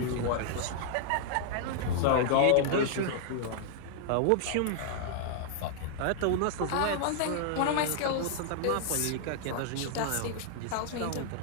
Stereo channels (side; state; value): both; different; correlation -0.01